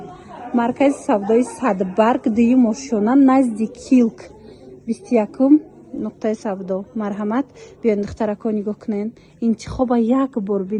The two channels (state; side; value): identical; both; correlation 1.00